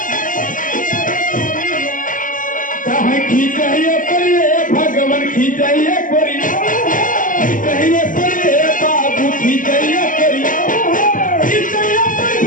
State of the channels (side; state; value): right; late; 0.38 ms